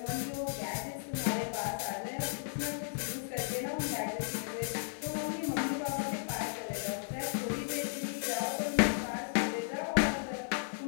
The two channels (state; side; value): silent; right; digital silence